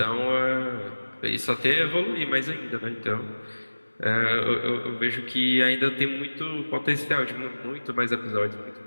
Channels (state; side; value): inverted; both; correlation -1.00